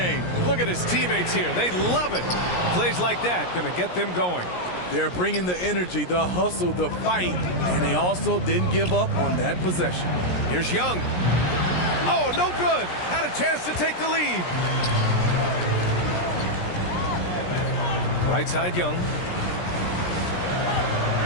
Look at his teammates here. They love it. Plays like that going to get them going. They're bringing the energy, the hustle, the fight, and they also didn't give up on that possession. Here's Young. Oh, no good. Had a chance to take the lead. Right side, Young.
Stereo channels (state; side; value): late; right; 17 ms